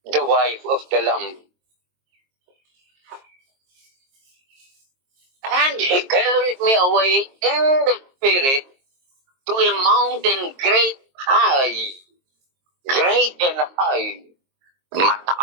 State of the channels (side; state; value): left; late; 22 ms